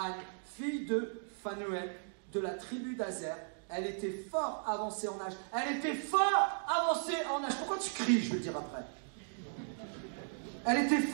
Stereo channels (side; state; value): left; silent; digital silence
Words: fille de Phanuel, de la tribu d'Azer. Elle était fort avancée en âge. Elle était fort avancée en âge. Pourquoi tu cries, je vais le dire après. Elle était